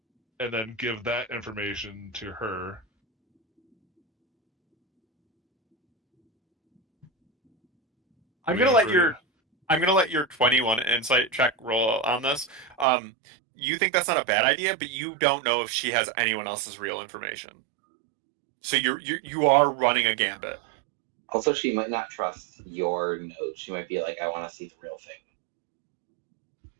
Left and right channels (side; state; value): left; drops out; at 12.9 s